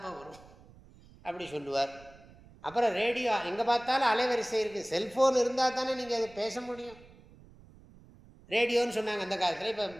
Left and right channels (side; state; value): right; noise; rumble, 23 dB below the sound